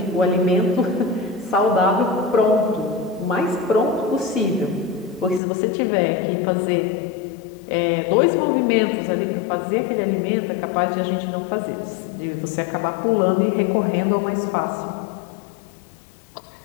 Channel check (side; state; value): right; drops out; at 5.4 s